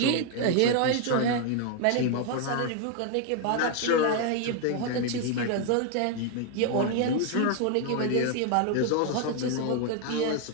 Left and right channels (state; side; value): different; both; correlation 0.01